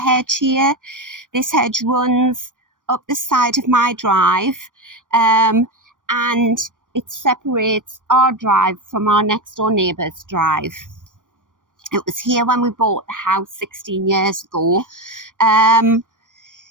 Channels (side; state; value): left; late; 0.88 ms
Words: here. This hedge runs up the side of my drive, and it separates our drive from our next door neighbour's drive. It was here when we bought the house 16 years ago.